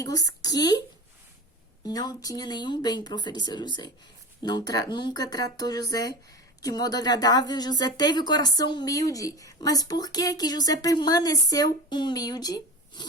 que não tinha nenhum bem para oferecer a José. Nunca tratou José de modo agradável. José teve o coração humilde. Mas por que José permaneceu humilde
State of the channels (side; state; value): both; normal; correlation 0.29